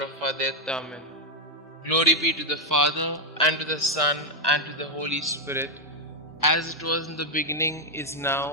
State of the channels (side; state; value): both; normal; correlation 0.00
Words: of our death. Amen. Glory be to the Father, and to the Son, and to the Holy Spirit, as it was in the beginning, is